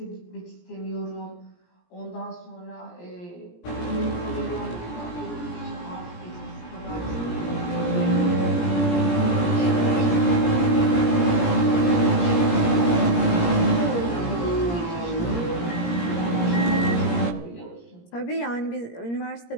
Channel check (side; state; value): right; late; 17 ms